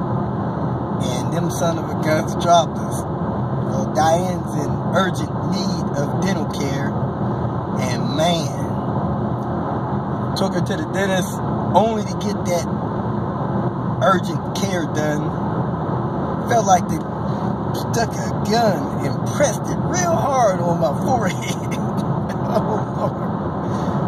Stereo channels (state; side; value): identical; both; correlation 1.00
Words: And them son of a guns dropped us. Well, Diane's in urgent need of dental care, and man, took her to the dentist only to get that urgent care done. Felt like they stuck a gun and pressed it real hard on my forehead. Oh Lord.